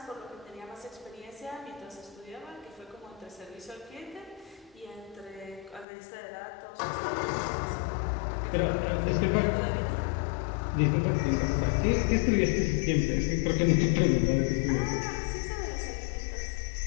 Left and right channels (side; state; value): right; drops out; at 5.9 s